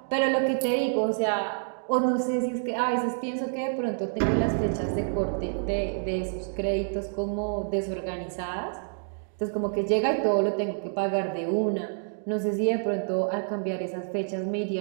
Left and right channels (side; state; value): left; silent; digital silence